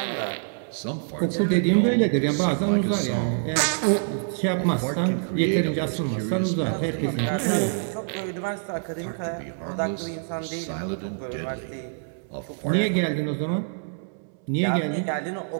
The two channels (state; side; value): silent; left; 61 dB below the other